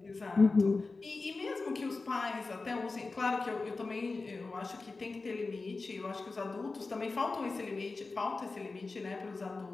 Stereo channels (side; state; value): right; quieter; 3.8 dB